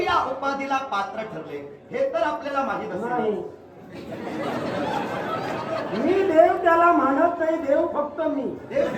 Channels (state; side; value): identical; both; correlation 1.00